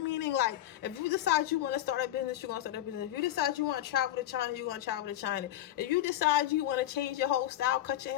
meaning like if you decide you want to start a business, you're going to start a business. If you decide you want to travel to China, you're going to travel to China. If you decide you want to change your whole style, cut your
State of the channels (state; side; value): quieter; right; 13.3 dB